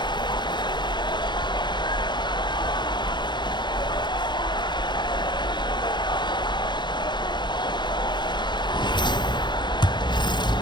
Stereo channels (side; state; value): right; late; 0.22 ms